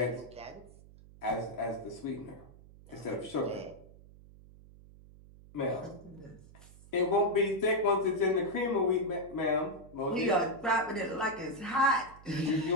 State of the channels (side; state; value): right; noise; hum, 21 dB below the sound